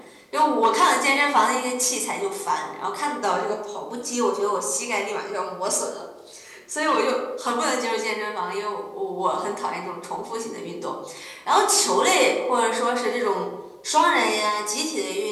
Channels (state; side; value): identical; both; correlation 1.00